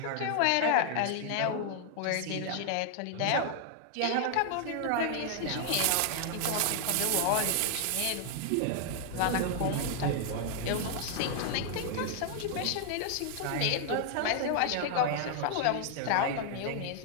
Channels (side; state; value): both; different; correlation 0.00